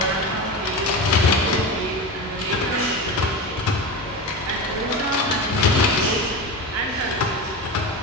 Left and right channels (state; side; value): normal; both; correlation 0.24